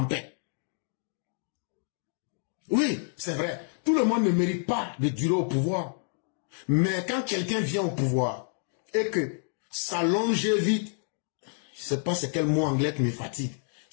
paix. Oui, c'est vrai. Tout le monde ne mérite pas de durer au pouvoir. Mais quand quelqu'un vient au pouvoir et que sa longévité, je ne sais pas c'est quel mot anglais qui me fatigue,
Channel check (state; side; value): silent; right; 59 dB below the other